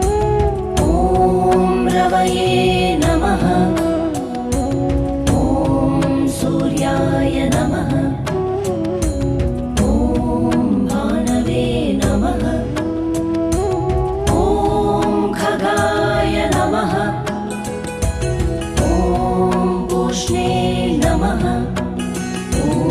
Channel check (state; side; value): identical; both; correlation 1.00